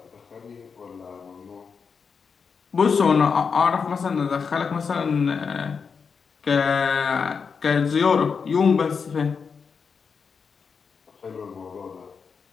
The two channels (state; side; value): quieter; right; 5.7 dB